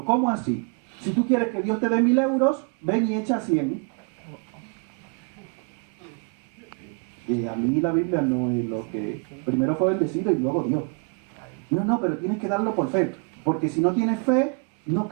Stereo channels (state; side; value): quieter; left; 36.8 dB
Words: ¿cómo así? Si tú quieres que Dios te dé 1.000 euros, ven y echa 100. Y a mí la Biblia no es lo que... Primero fue bendecido y luego Dios. No, pero tienes que darlo por fe. Porque si no tienes fe, no